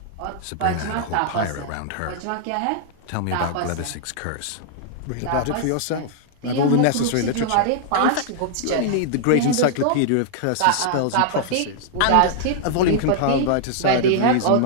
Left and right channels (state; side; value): different; both; correlation -0.01